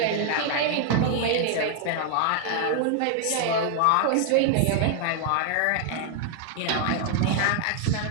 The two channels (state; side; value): different; both; correlation 0.00